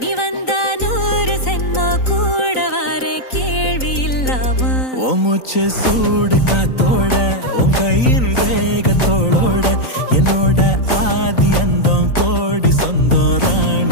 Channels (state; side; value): late; right; 3.9 ms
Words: நீ வந்தா 100 சென்மோ கூட வர கேள்வி இல்லாம உன் மூச்சு சூடு காத்தோட உன் கையின் ரேகத்தோளோட என்னோட ஆதி அந்தம் கோடி சொந்தம்